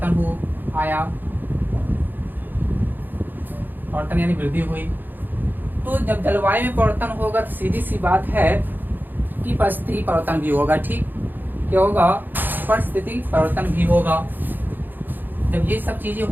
आया, परिवर्तन यानी वृद्धि हुई। तो जब जलवायु में परिवर्तन होगा तो सीधी सी बात है कि परिस्थिति परिवर्तन भी होगा, ठीक। क्या होगा? परिस्थिति परिवर्तन भी होगा। जब ये सब चीजें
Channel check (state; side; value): late; left; 0.089 ms